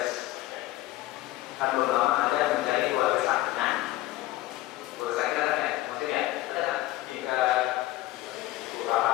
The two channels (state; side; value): quieter; right; 16.6 dB